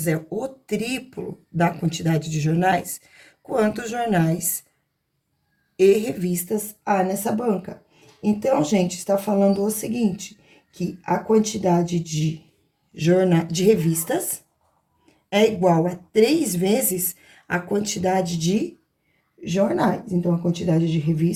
é o triplo da quantidade de jornais, quantos jornais e revistas há nessa banca? Então, gente, está falando o seguinte, que a quantidade de revistas é igual a 3 vezes a quantidade de jornais. Então, a quantidade de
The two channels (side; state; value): both; identical; correlation 1.00